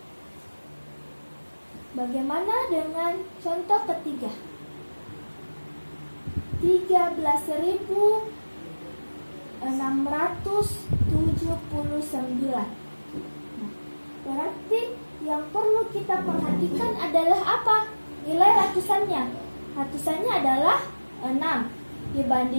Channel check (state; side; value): inverted; both; correlation -1.00